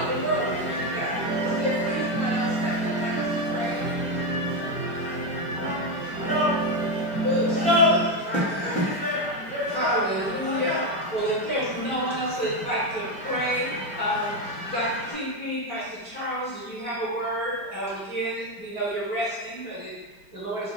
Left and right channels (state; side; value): late; right; 5.0 ms